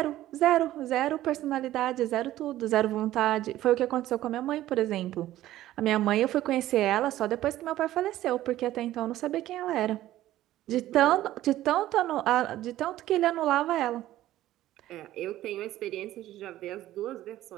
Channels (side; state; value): left; quieter; 14.3 dB